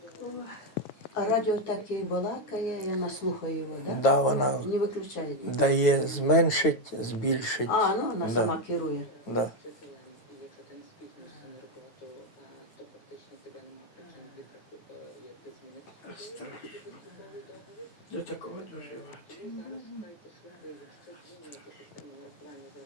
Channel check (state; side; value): late; right; 9.0 ms